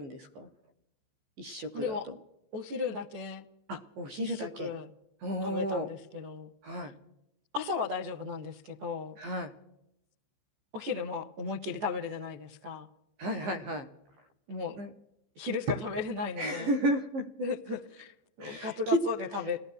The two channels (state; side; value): late; left; 15 ms